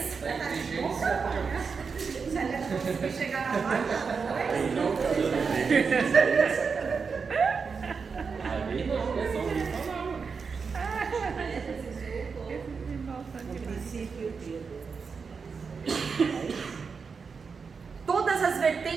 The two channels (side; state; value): left; quieter; 5.4 dB